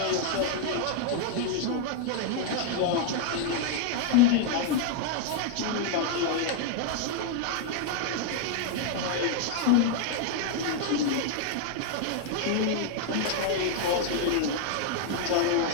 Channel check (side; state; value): both; different; correlation 0.00